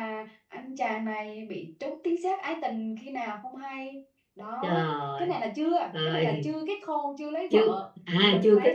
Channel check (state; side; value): identical; both; correlation 1.00